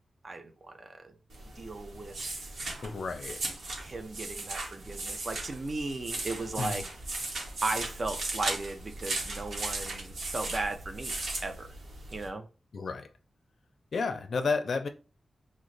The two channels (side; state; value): both; normal; correlation 0.87